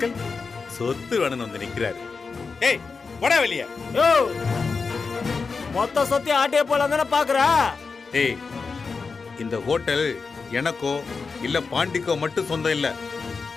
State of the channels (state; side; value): quieter; right; 4.7 dB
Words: சொத்து வேணும்னு வந்து நிக்கிறாரு. ஏய் போடா வெளிய. யோ, மொத்த சொத்தி ஆட்டிய போலாம் தானே பாக்குறா? ஏய், இந்த ஹோட்டல் எனக்கோ இல்ல பாண்டிக்கோ மட்டும் சொந்தம் இல்ல.